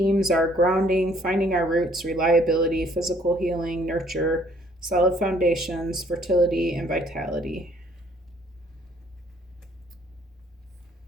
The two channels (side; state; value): both; normal; correlation 0.61